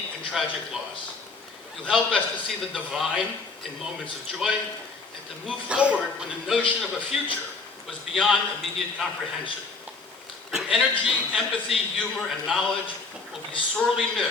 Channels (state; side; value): quieter; right; 4.1 dB